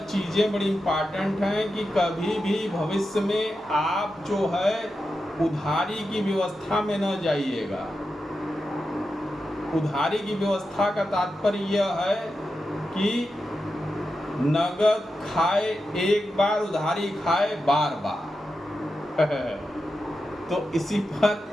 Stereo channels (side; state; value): both; normal; correlation 0.89